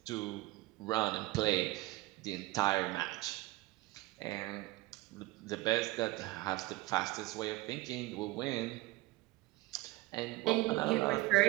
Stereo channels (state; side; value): quieter; left; 19.6 dB